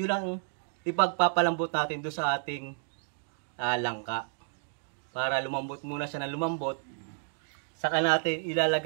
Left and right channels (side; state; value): left; silent; 57 dB below the other